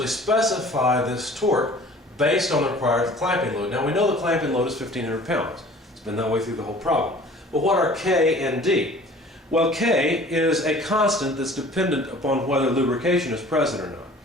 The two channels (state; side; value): normal; both; correlation 0.47